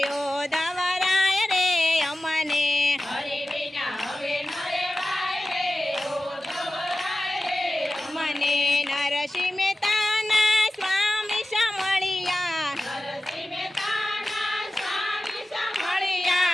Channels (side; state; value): both; normal; correlation 0.95